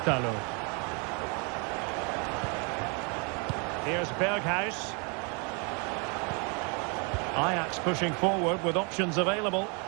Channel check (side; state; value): left; quieter; 34.5 dB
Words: Here's Berghuis. Ajax pushing forward with options available.